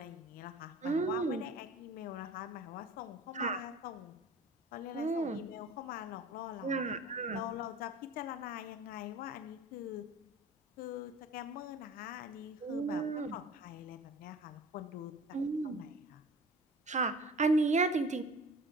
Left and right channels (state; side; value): normal; both; correlation 0.42